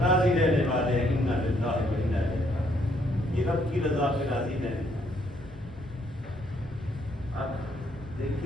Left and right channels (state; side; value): normal; both; correlation 0.70